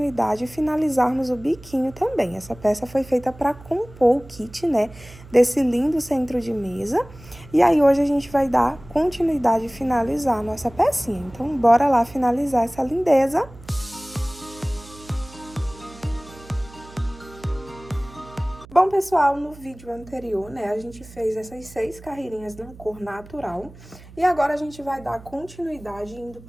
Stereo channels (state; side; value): noise; right; hum, 20 dB below the sound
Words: e finalizarmos o biquinho também. Essa peça foi feita para compor o kit, né, desse lindo centro de mesa e aí hoje a gente vai dar continuidade e finalizar a nossa pecinha. Então bora lá finalizar essa lindeza. Bom, pessoal, no vídeo anterior, né, a gente fez essas 6 carreirinhas na cor natural e agora a gente vai dar continuidade indo